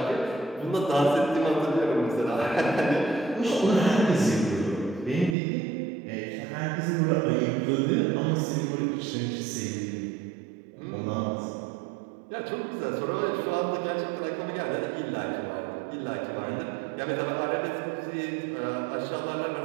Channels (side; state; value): left; drops out; at 5.4 s